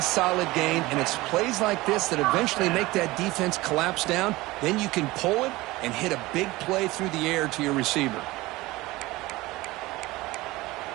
solid gain, and it's plays like this that eventually make that defense collapse down. Then you can pull it and hit a big play through the air to your receiver.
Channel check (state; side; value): quieter; left; 19.9 dB